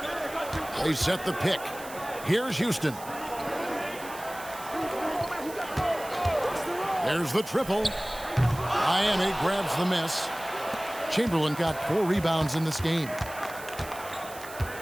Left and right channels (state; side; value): noise; right; hiss, 15 dB below the sound